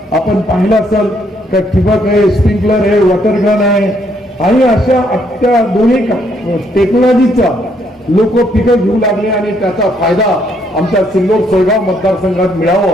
आपण पाहिलं असेल का ठिबक आहे, स्प्रिंकलर आहे, वॉटर गन आहे, आणि अशा त्या दोन्ही टेक्नॉलॉजीचा लोक पिकं घेऊ लागले आणि त्याचा फायदा आमच्या सिल्लोड सोयगाव मतदारसंघात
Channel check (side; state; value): both; normal; correlation 0.71